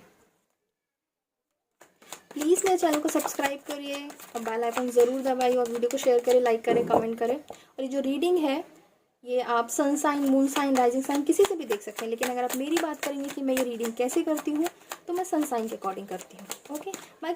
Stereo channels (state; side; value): identical; both; correlation 1.00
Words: प्लीज़ मेरे चैनल को सब्सक्राइब करिए और बेल आइकन ज़रूर दबाइए, और वीडियो को शेयर करें, लाइक करें, कमेंट करें। और ये जो रीडिंग है ये आप sun sign, moon sign, rising sign किसी से भी देख सकते हैं, लेकिन अगर आप मेरी बात करेंगे कि मैं ये रीडिंग कैसे करती हूँ तो मैं सन साइन के अकॉर्डिंग करती हूँ। ओके,